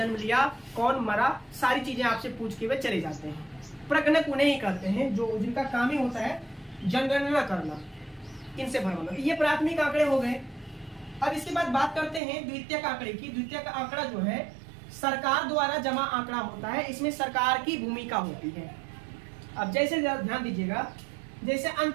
लिया, कौन मरा, सारी चीजें आपसे पूछ के वे चले जाते हैं। प्रगणक उन्हें ही करते हैं जो जिनका काम ही होता है जनगणना करना, इनसे भरवाना। ये प्राथमिक आंकड़े हो गए। अब इसके बाद बात करते हैं द्वितीयक आंकड़े की। द्वितीयक आंकड़ा जो है सरकार द्वारा जमा आंकड़ा होता है, इसमें सरकार की भूमिका होती है। अब जैसे ध्यान दीजिएगा, जैसे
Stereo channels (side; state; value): left; drops out; at 12.2 s